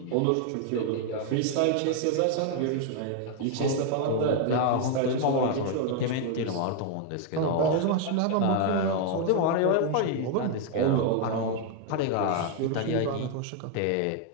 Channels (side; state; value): both; different; correlation 0.00